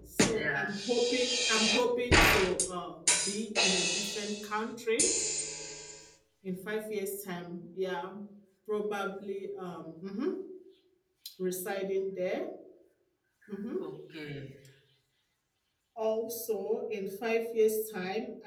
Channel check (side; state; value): both; identical; correlation 1.00